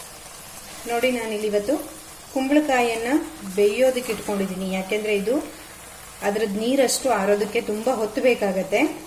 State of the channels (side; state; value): both; identical; correlation 1.00